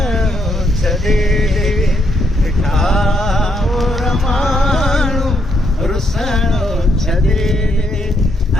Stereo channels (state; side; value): normal; both; correlation 0.75